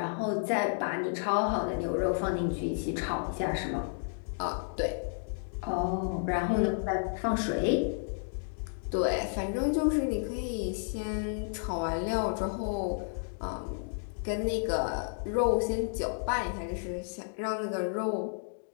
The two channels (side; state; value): right; silent; digital silence